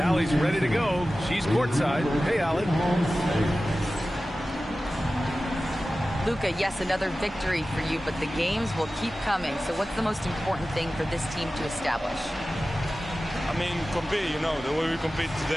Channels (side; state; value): both; normal; correlation 0.95